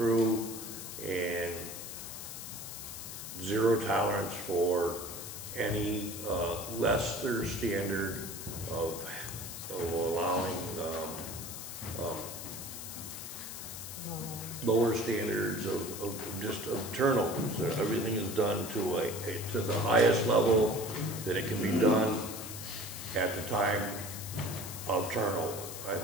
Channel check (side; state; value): left; noise; hiss, 9 dB below the sound